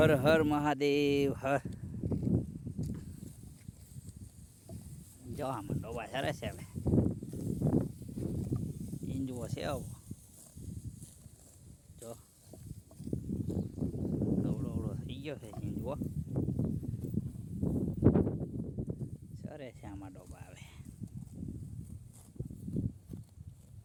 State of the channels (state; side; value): identical; both; correlation 1.00